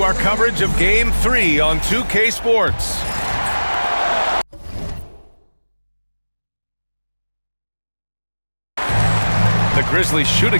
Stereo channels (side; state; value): both; inverted; correlation -1.00